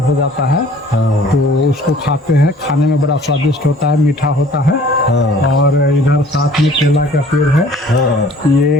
हो जाता है तो उसको खाते हैं। खाने में बड़ा स्वादिष्ट होता है, मीठा होता है। और इधर साथ में केला का पेड़ है,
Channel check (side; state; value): both; normal; correlation 0.52